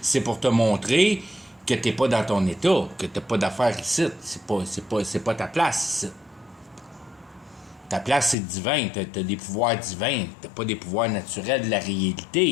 c'est pour te montrer que t'es pas dans ton état, que t'as pas d'affaires ici. C'est pas ta place ici. Ta place, c'est divin. T'as des pouvoirs divins. T'as pas des pouvoirs naturels de la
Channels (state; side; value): drops out; right; at 8.3 s